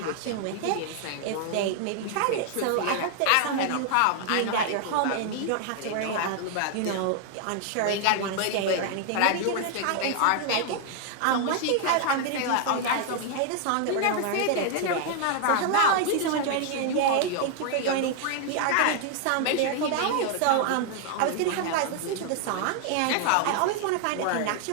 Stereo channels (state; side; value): different; both; correlation 0.00